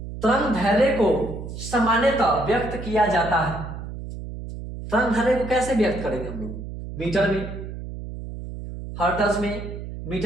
तरंग दैर्ध्य को सामान्यतः व्यक्त किया जाता है। तरंग दैर्ध्य को कैसे व्यक्त करेंगे हम लोग? मीटर में, हर्ट्ज में,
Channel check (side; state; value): right; noise; hum, 9 dB below the sound